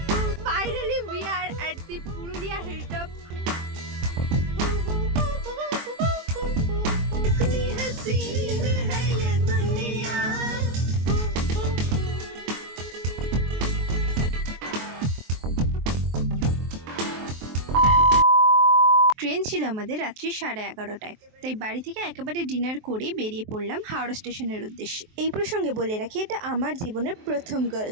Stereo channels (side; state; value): left; late; 23 ms